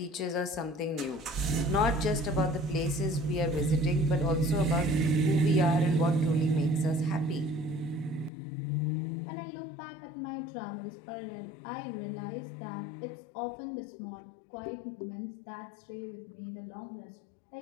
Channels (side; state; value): right; drops out; at 8.3 s